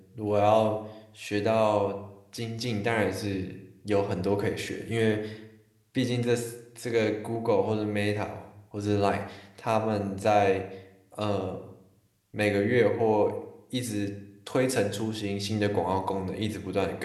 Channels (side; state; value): both; identical; correlation 1.00